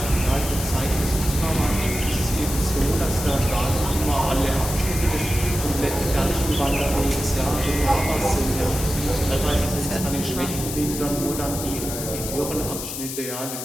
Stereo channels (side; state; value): left; noise; hiss, 7 dB below the sound